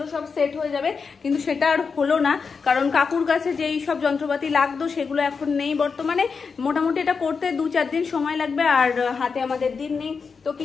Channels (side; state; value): right; quieter; 5.3 dB